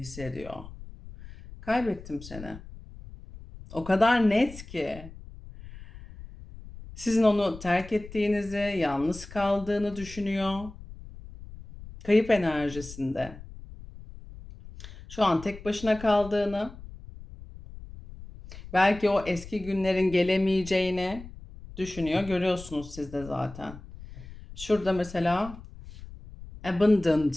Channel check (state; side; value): noise; left; rumble, 16 dB below the sound